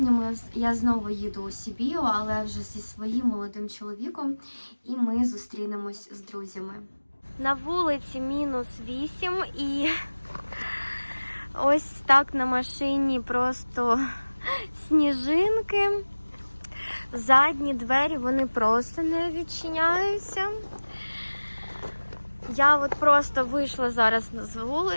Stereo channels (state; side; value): inverted; both; correlation -1.00